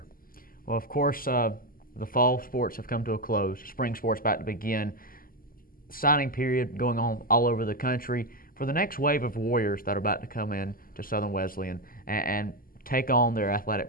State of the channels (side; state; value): right; late; 0.42 ms